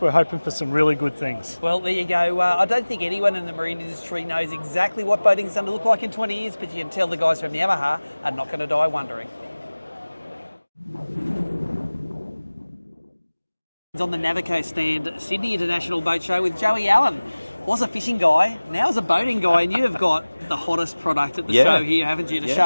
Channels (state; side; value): inverted; both; correlation -1.00